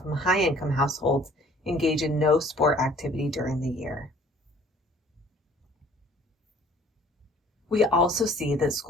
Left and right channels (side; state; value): both; normal; correlation 0.54